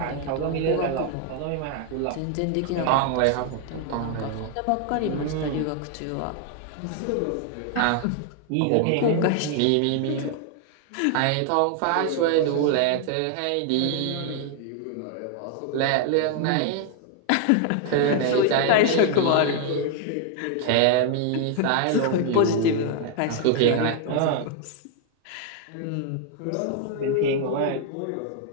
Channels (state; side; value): different; both; correlation 0.00